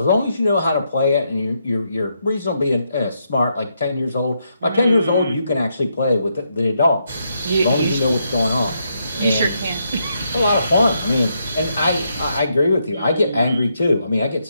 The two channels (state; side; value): inverted; both; correlation -0.79